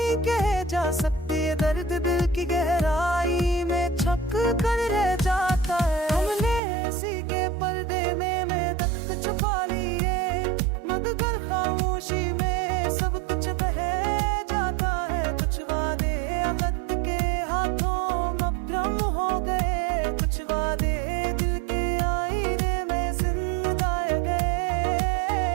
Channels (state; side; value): drops out; left; at 6.6 s